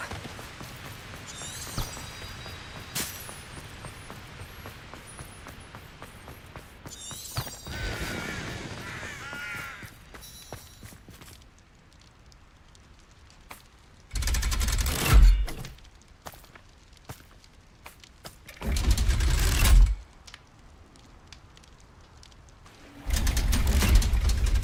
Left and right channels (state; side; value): identical; both; correlation 1.00